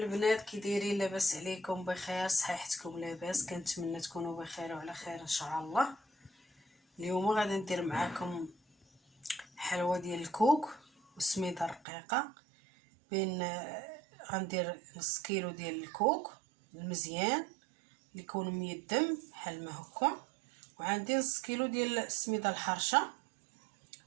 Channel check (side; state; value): left; drops out; at 11.8 s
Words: كي دايرين؟ لاباس عليكم؟ بخير؟ صحيحتكم لاباس؟ كنتمنى تكونوا بخير وعلى خير ان شاء الله. اليوم غادي ندير معاكم حلوه ديال الكوك وسميده رقيقه. غندير نص كيلو ديال الكوك المزيان اللي يكون ميدم بحال ما هكا، وعندي نص كيلو ديال السميده الحرشه،